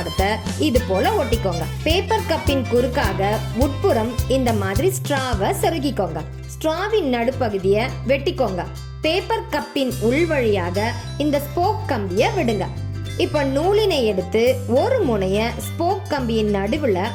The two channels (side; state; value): both; identical; correlation 1.00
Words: இது போல ஒட்டிக்கோங்க. பேப்பர் கப்பின் குறுக்காக உட்புறம் இந்த மாதிரி ஸ்ட்ராவை செருகிக்கோங்க. ஸ்ட்ராவின் நடுப்பகுதியை வெட்டிக்கோங்க. பேப்பர் கப்பின் உள் வழியாக இந்த ஸ்போக் கம்பியை விடுங்க. இப்ப நூலினை எடுத்து ஒரு முனைய ஸ்போக் கம்பியின் நடுவுல